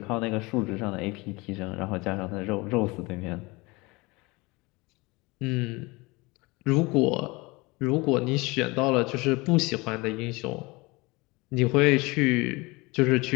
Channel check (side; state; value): right; quieter; 24.3 dB